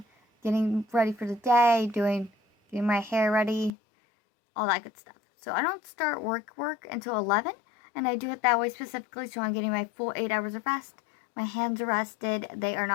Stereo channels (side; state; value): right; drops out; at 3.7 s